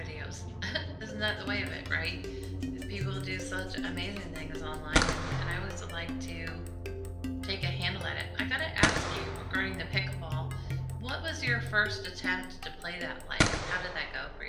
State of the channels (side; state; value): both; identical; correlation 1.00